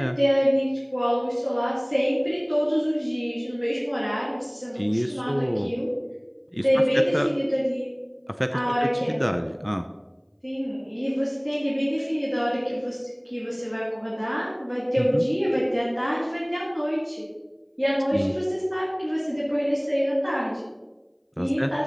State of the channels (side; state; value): both; identical; correlation 1.00